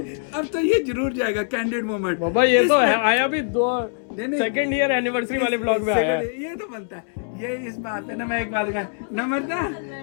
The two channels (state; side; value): silent; right; 63 dB below the other